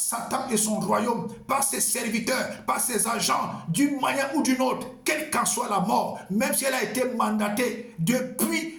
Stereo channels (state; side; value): identical; both; correlation 1.00